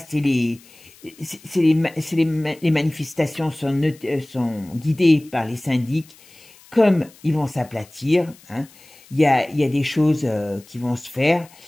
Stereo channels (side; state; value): left; noise; hiss, 25 dB below the sound